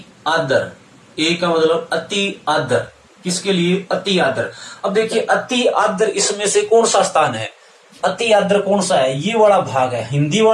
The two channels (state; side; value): identical; both; correlation 1.00